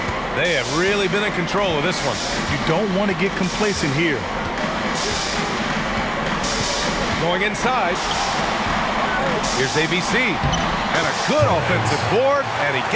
They have really been in control of this one. You don't want to get complacent here. Going inside. Here's ABC. And a good offensive board, and he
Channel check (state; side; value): identical; both; correlation 1.00